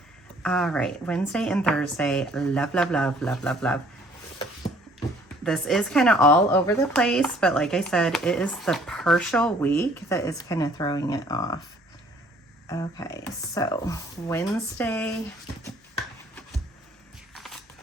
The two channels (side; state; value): both; normal; correlation 0.59